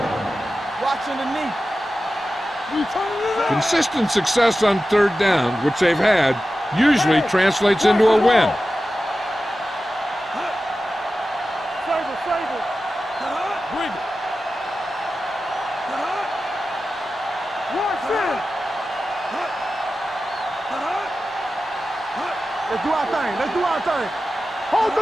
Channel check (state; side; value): normal; both; correlation 0.93